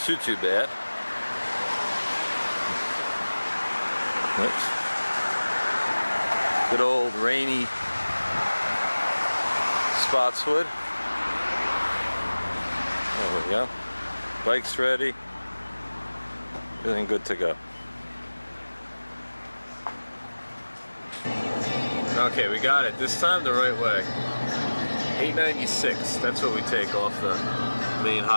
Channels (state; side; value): inverted; both; correlation -1.00